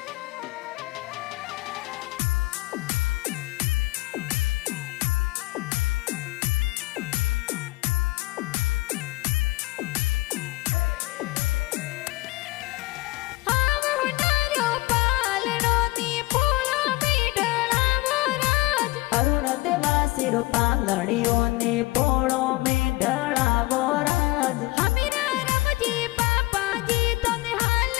पांगड़ियों ने पोड़ों में ढड़ावो राज हमीरा रमजी पापा जी तो निहाल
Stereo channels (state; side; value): quieter; right; 20.5 dB